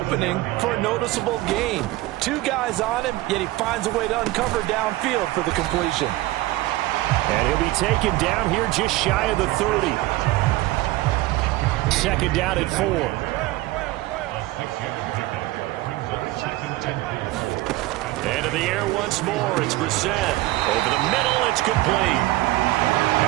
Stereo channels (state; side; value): quieter; left; 18.2 dB